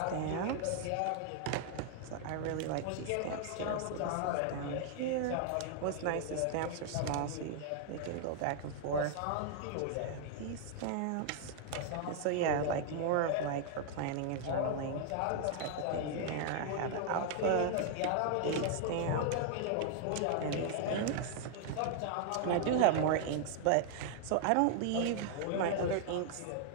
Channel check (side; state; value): both; different; correlation 0.00